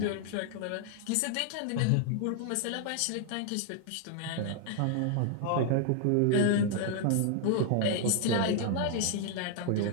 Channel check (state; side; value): different; both; correlation 0.00